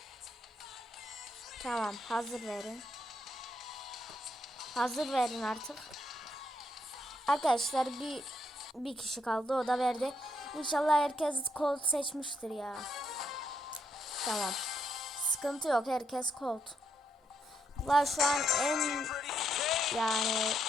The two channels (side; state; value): both; normal; correlation 0.77